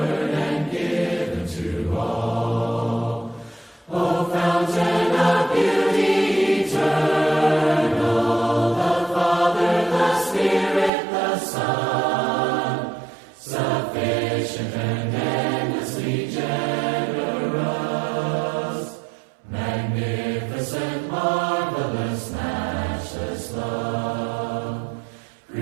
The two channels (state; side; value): drops out; left; at 10.9 s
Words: and given to all. O fountain of beauty eternal, the Father, the Spirit, the Son, sufficient and endlessly generous, magnificent, marvelous, matchless love.